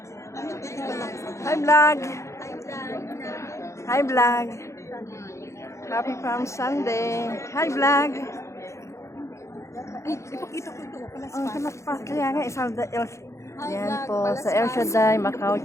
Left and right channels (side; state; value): right; late; 0.14 ms